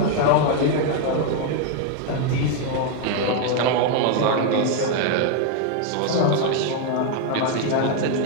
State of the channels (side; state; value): both; different; correlation 0.00